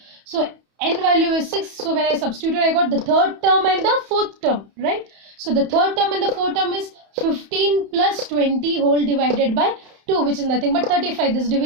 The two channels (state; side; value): late; left; 31 ms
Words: So n value is 6. So when I substitute, I got the third term and the fourth term, right? So the third term and the fourth term is 15 plus 20 whole divided by 2, which is nothing but 35. This